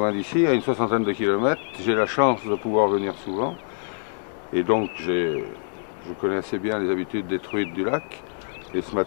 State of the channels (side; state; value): right; silent; digital silence